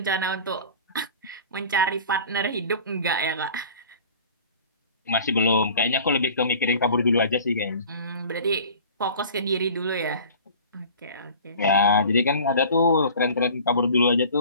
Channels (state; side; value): inverted; both; correlation -0.43